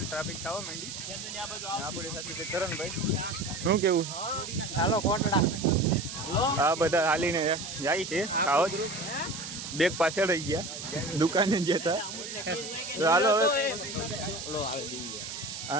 ટ્રાફિક થવા માંડી। આપણી સાથે કરણભાઈ, શું કેવું? હાલો કોટડા આ બધા હાલીને જાય છે, ખાવત બેગ પાછળ રહી ગયા દુકાને જતા। તો હાલો હવે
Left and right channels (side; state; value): right; noise; hiss, 8 dB below the sound